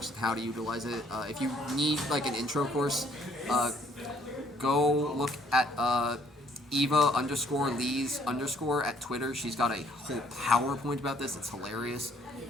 and how to utilize it. If you need like an intro course, go look at Eva_Lees_ at Twitter. She's got a whole PowerPoint about this. It's hilarious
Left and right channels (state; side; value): normal; both; correlation 0.63